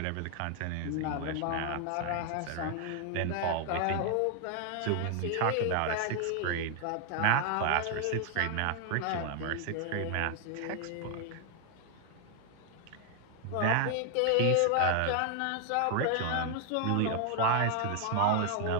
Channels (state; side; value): different; both; correlation 0.00